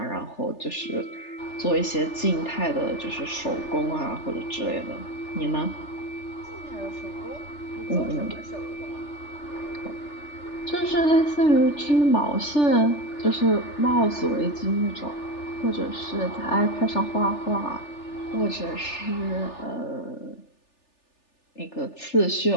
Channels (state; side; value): late; right; 3.4 ms